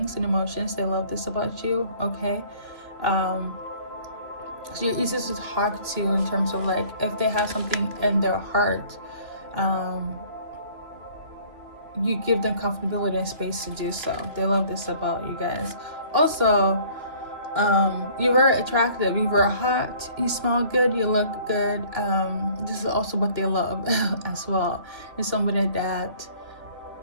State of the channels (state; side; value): late; left; 2.9 ms